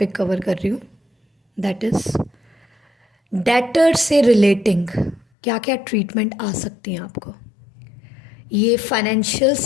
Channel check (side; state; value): right; drops out; at 5.2 s